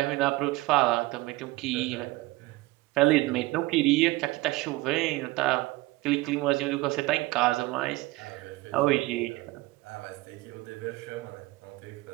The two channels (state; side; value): quieter; left; 20.6 dB